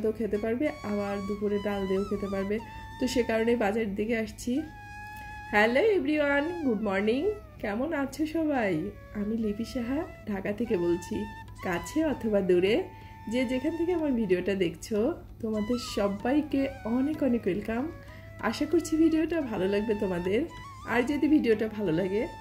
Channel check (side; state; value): both; identical; correlation 1.00